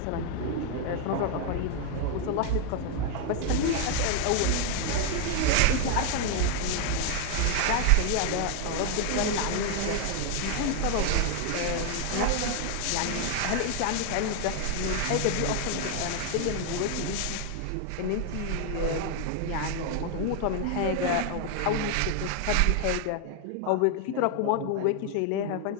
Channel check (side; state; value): both; different; correlation 0.00